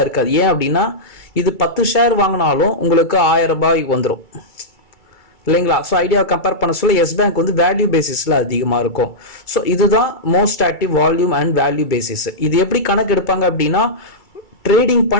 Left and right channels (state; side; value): late; right; 2.3 ms